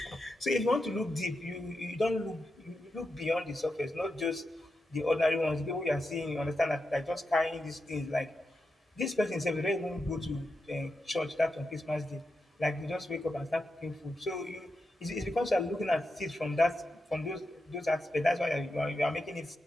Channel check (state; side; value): normal; both; correlation 0.88